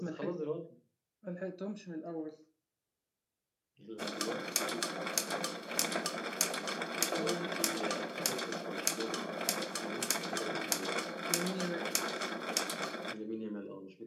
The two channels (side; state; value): both; identical; correlation 1.00